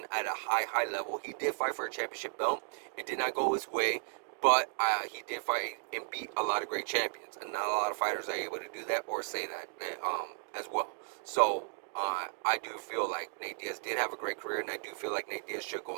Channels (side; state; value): left; silent; digital silence